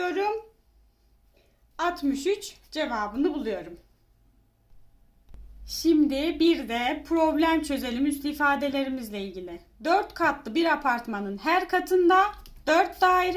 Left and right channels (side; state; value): both; identical; correlation 1.00